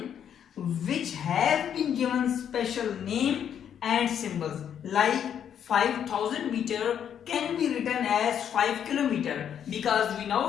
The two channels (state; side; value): quieter; right; 8.9 dB